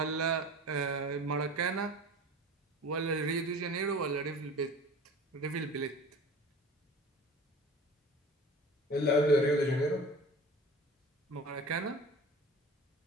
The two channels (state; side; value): normal; both; correlation 0.40